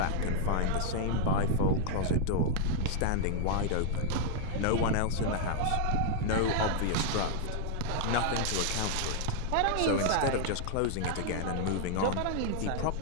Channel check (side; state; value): both; different; correlation 0.00